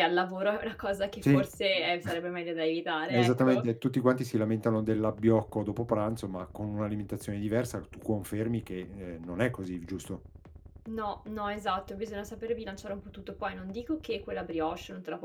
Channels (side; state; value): both; identical; correlation 1.00